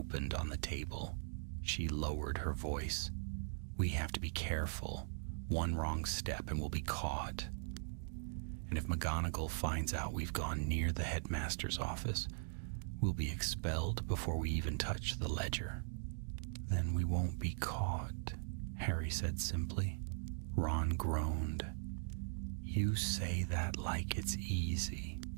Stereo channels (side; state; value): left; silent; digital silence